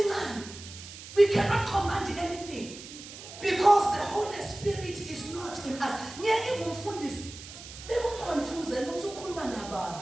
we cannot command anything because the Holy Spirit is not in us.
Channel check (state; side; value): noise; right; hiss, 14 dB below the sound